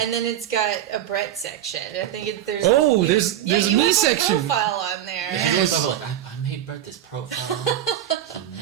then it's got a Brett section. I think there's. There's you a have me a section. profile on there. She's always talking about I made Brett this profile. He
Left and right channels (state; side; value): quieter; left; 11.4 dB